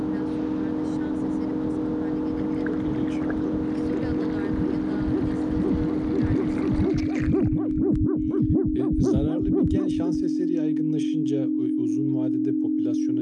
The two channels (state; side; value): identical; both; correlation 1.00